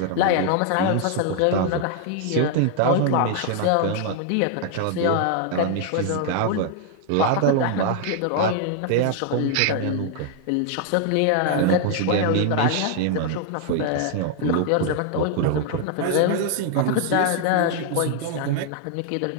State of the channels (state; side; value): different; both; correlation 0.00